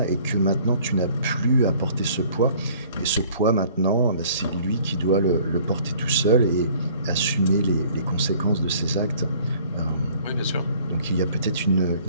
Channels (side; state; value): both; inverted; correlation -0.54